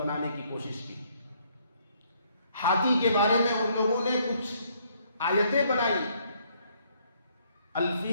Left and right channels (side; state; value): both; inverted; correlation -0.67